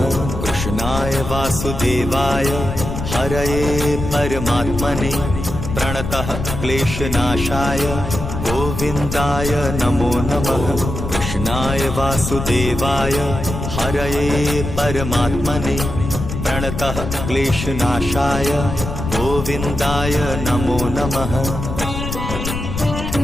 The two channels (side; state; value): left; noise; rumble, 6 dB below the sound